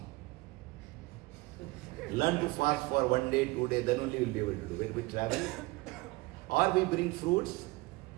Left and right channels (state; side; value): quieter; left; 22.7 dB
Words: Learn to fast for 1 day, 2 days, then only we will be able to do it. When we travel, or we bring fruits,